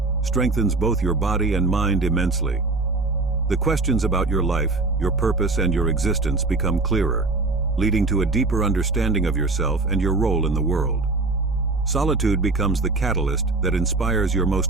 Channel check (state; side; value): quieter; left; 3.5 dB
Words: strengthens both your body and mind immensely. The questions about your life, your purpose, and your existence become clearer, leading to a deeper understanding of yourself and your role in the world. Solitude becomes the catalyst that inspires your